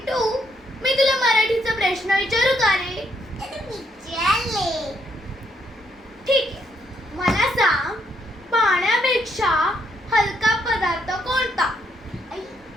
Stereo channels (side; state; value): both; normal; correlation 0.74